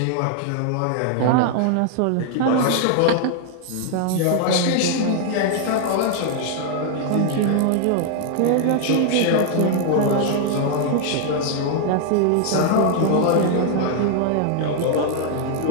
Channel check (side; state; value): both; different; correlation 0.00